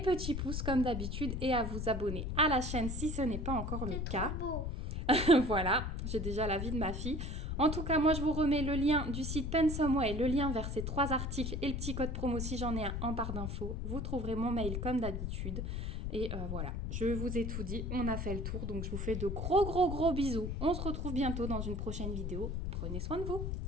pouces comme d'habitude et à vous abonner à la chaîne si ce n'est pas encore le cas. Voilà, j'ai déjà l'avis de ma fille. En tout cas, moi je vous remets le lien du site Pensomeway, le lien vers ces 3 articles et le petit code promo si j'en ai un en barre d'infos. Vous trouverez mon mail comme d'habitude. Et voilà, je vous ai tout dit, on a fait le tour, donc je vous fais de gros bisous. On se retrouve bientôt dans une prochaine vidéo. Prenez soin de vous.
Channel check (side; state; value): left; noise; rumble, 3 dB below the sound